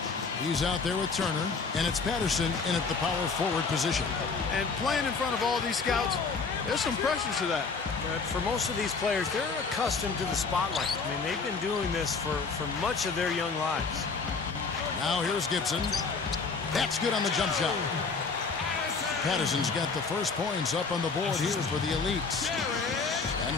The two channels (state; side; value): quieter; right; 4.7 dB